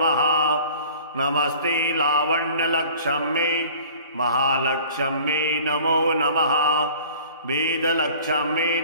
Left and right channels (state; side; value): inverted; both; correlation -0.47